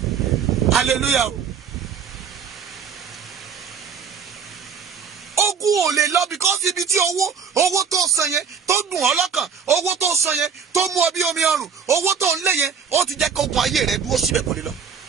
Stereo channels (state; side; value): quieter; left; 6.6 dB